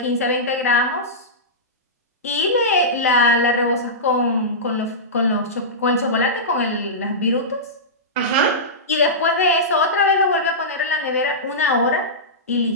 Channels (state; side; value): normal; both; correlation -0.16